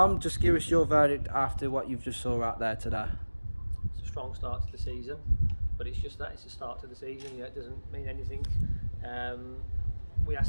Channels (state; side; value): inverted; both; correlation -1.00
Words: just give us your verdict after what you've just saw out there today. It's a strong start to the season, but it's just that, it's a start to the season. It doesn't mean anything. We